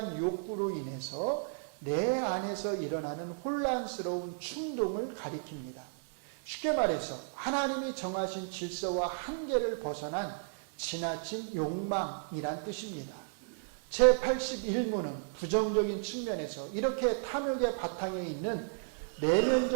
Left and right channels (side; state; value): left; silent; 55 dB below the other